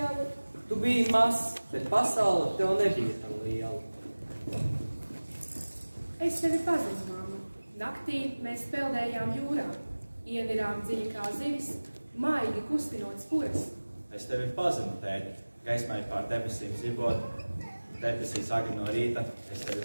Tu biji mazs, bet pasaule tev nebija tā liela. Es tevi pazinu, mamma. Naktī mēs peldējām jūrā. Ienirām dziļi kā zivis, maigi kustinot spuras. Es tevi pazinu, tēti. Gaismai pār debesīm zibot. Debesīs agri no rīta. Es tevi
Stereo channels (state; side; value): inverted; both; correlation -1.00